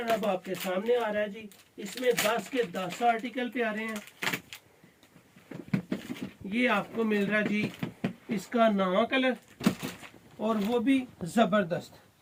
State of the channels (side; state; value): both; identical; correlation 1.00